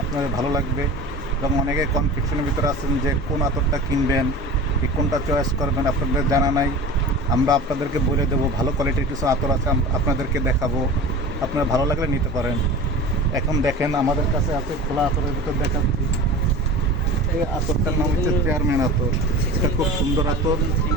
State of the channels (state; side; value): normal; both; correlation 0.35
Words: আপনাদের ভালো লাগবে। এবং অনেকে কনফিউশনের ভিতরে আছেন যে কোন আতরটা কিনবেন, কি কোনটা চয়েস করবেন, আপনাদের জানা নাই। আমরা আপনাদেরকে বলে দেবো, ভালো কোয়ালিটির কিছু আতর আছে, আপনাদেরকে দেখাবো। আপনার ভালো লাগলে নিতে পারেন। এখন দেখেন আমাদের কাছে আছে খোলা আতরের ভিতর দেখাচ্ছি। এই আতরটার নাম হচ্ছে চেয়ারম্যান আতর। এটা খুব সুন্দর আতর,